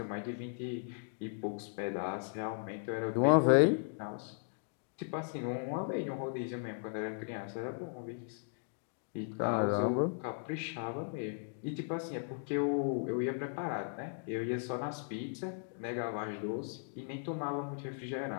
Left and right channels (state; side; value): silent; right; digital silence